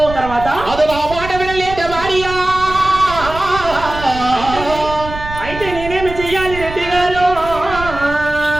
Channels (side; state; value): right; noise; rumble, 11 dB below the sound